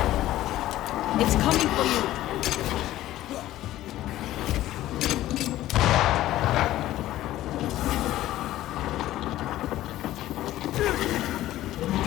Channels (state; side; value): quieter; right; 14.7 dB